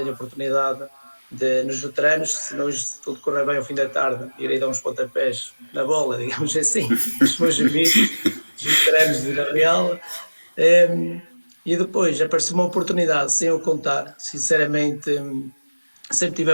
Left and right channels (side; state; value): both; inverted; correlation -1.00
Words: a oportunidade nos veteranos, se tudo correr bem ao fim da tarde, irei dar uns pontapés na bola, digamos assim, os meus amigos, os veteranos de Vila Real. E depois apareceu uma oportunidade, sem eu contar, sinceramente, sempre tive